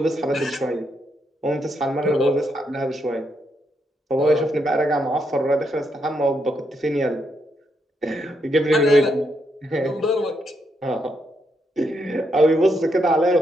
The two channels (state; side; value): normal; both; correlation 0.79